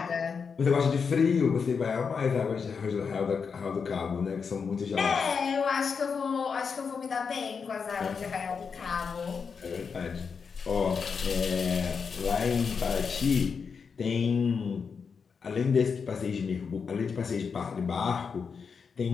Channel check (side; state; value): right; quieter; 5.8 dB